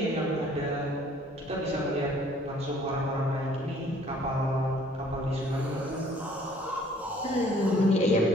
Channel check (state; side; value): normal; both; correlation 0.58